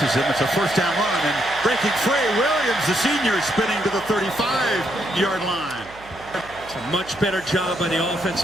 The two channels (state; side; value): noise; right; hum, 21 dB below the sound